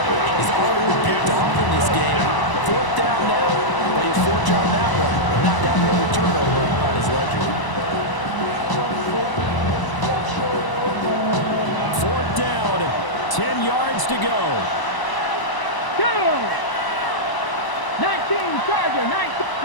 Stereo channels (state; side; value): late; right; 1.0 ms